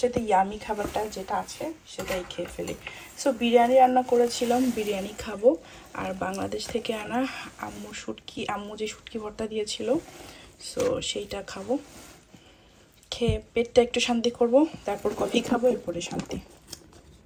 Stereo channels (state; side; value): identical; both; correlation 1.00